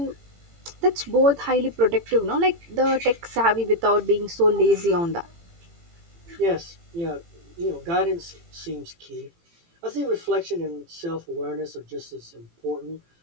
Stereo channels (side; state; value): left; late; 18 ms